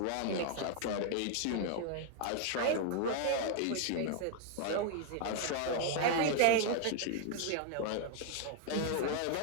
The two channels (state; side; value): different; both; correlation 0.00